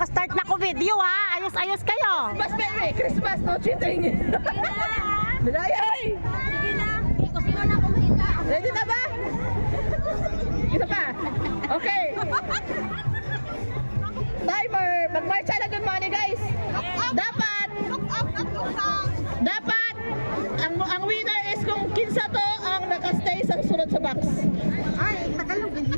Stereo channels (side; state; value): both; inverted; correlation -1.00